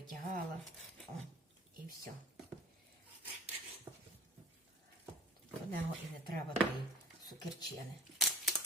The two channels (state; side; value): normal; both; correlation 0.42